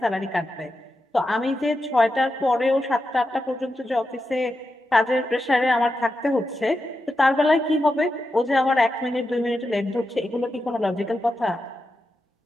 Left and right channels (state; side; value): normal; both; correlation 0.88